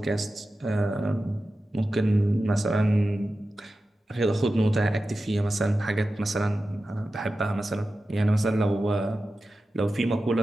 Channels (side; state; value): both; normal; correlation 0.93